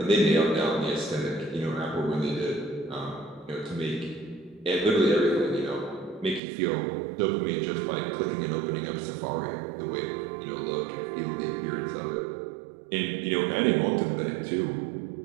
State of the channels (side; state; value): left; drops out; at 6.4 s